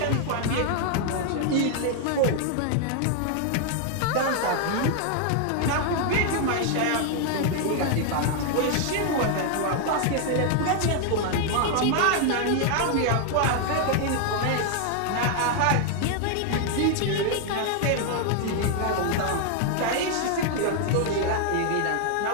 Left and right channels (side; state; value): both; different; correlation 0.00